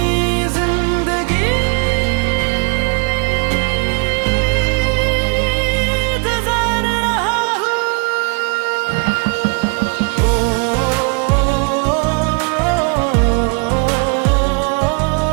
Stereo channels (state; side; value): quieter; left; 35.8 dB